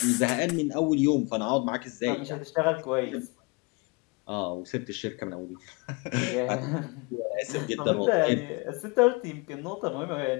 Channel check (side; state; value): right; quieter; 28.4 dB